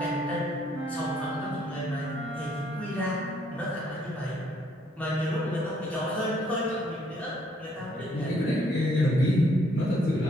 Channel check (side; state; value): both; normal; correlation 0.67